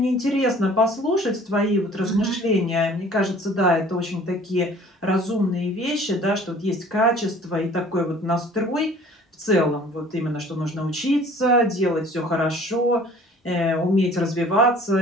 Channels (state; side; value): normal; both; correlation 0.51